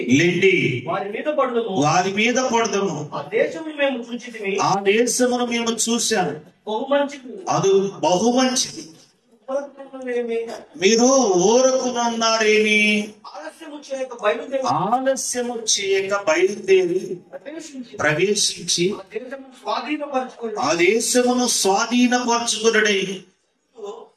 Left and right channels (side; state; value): both; identical; correlation 1.00